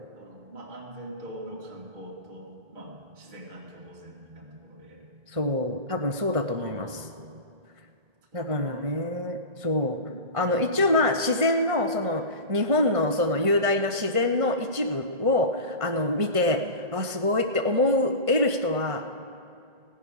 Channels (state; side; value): late; left; 1.5 ms